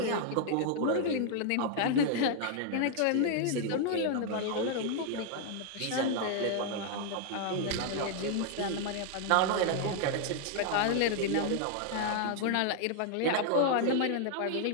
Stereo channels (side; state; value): both; different; correlation 0.00